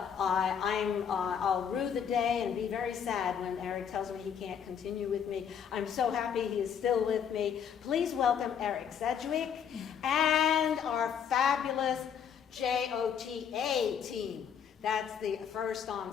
I'll rue the day and be very sad when Eric tells me he can't continue with me. I'm so happy he is still with me. Please welcome Eric Sedgwick and our fabulous JOTA team That's the first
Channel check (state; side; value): quieter; right; 7.9 dB